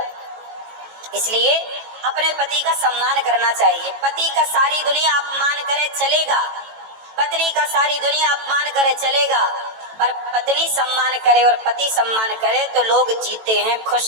इसलिए अपने पति का सम्मान करना चाहिए। पति का सारी दुनिया अपमान करे चलेगा, पत्नी का सारी दुनिया अपमान करे चलेगा, पर पत्नी सम्मान करे और पति सम्मान करे तो लोग जीते हैं,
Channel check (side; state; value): left; late; 18 ms